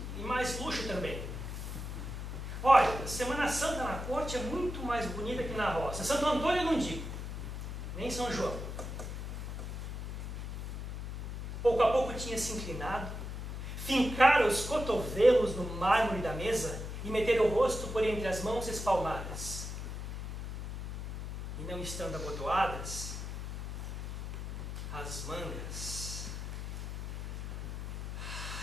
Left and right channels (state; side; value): noise; left; hum, 6 dB below the sound